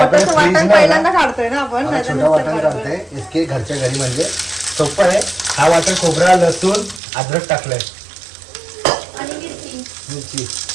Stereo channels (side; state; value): left; drops out; at 7.0 s